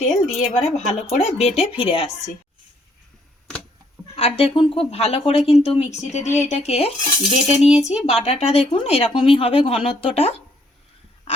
তেল, দিয়ে এবারে ভালো করে বেটে ফিরে আসছি। আর দেখুন খুব ভালো করে কিন্তু মিক্সিতে দিয়ে এটাকে বেটে নিয়েছি। বাটাটা দেখুন এরকমই হবে ঘনত্বটা।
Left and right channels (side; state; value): both; normal; correlation 0.67